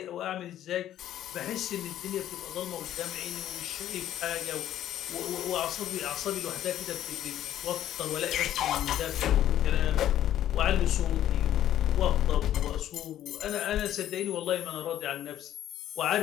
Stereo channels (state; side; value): quieter; right; 12.0 dB